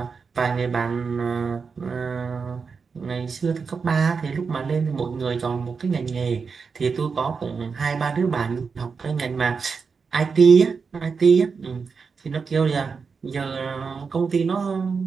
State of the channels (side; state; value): left; quieter; 5.3 dB